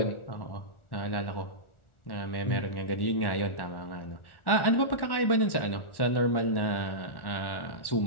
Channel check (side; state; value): right; late; 1.1 ms